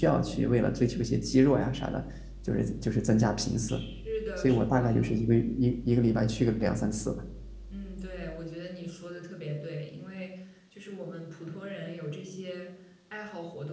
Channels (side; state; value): both; identical; correlation 1.00